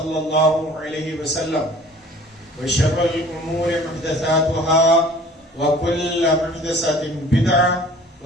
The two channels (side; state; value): both; normal; correlation 0.49